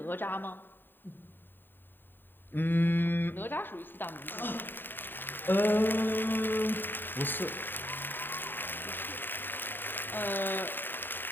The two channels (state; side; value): late; right; 0.094 ms